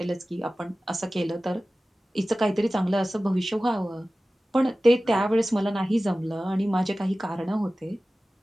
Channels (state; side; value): normal; both; correlation 0.96